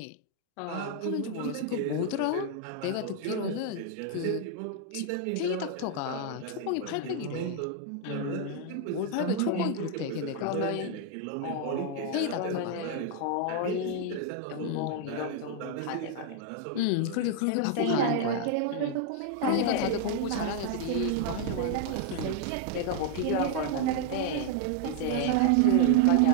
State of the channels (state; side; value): different; both; correlation 0.00